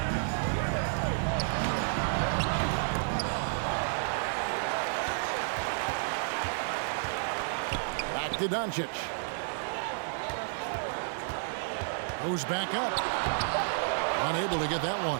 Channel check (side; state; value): left; silent; digital silence